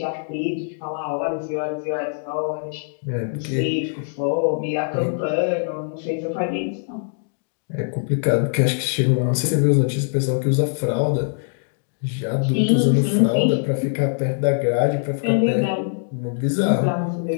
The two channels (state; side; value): silent; right; digital silence